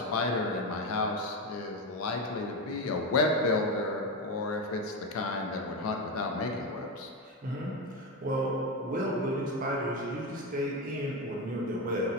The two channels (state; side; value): normal; both; correlation 0.14